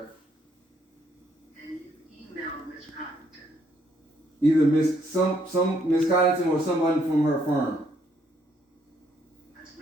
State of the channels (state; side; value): normal; both; correlation 0.70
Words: And you emailed Ms. Coddington? Either some Miss Coddington or someone from her firm. That's